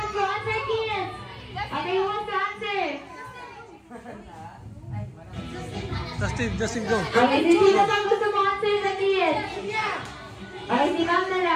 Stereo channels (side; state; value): both; identical; correlation 1.00